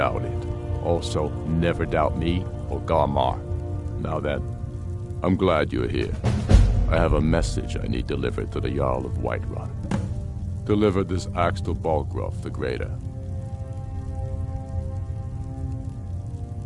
it. Also, never doubt me or Garmar. Now then, I'm glad you're here. I have a message I need delivered to the Jarl of Whiterun. Deliver this axe to Balgruuf the Greater.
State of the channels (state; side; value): identical; both; correlation 1.00